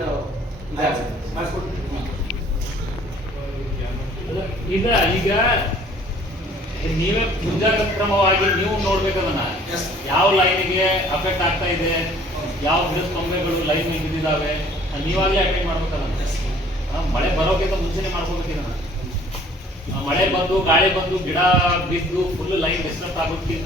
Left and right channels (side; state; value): both; normal; correlation 0.55